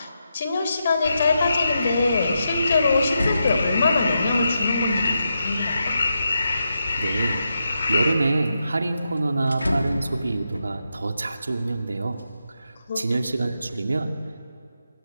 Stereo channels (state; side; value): inverted; both; correlation -0.86